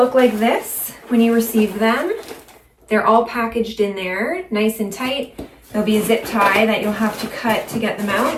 like this when you receive them. They're all packaged in there, nice and tight. There'll be a zip tie that you'll have to cut to get them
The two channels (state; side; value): identical; both; correlation 1.00